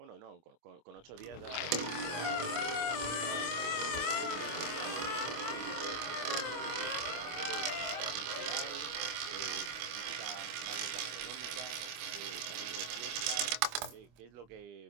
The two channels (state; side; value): late; left; 25 ms